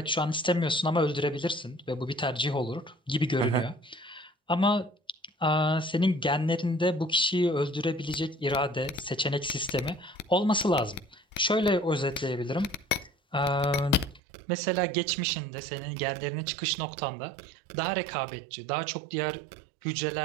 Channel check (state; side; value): drops out; left; at 14.2 s